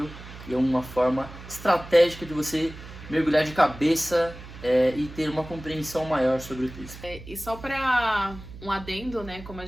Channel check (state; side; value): noise; right; hum, 15 dB below the sound